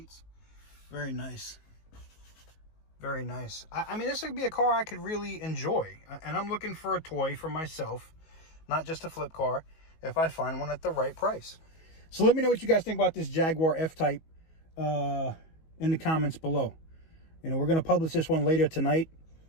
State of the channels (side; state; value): right; late; 19 ms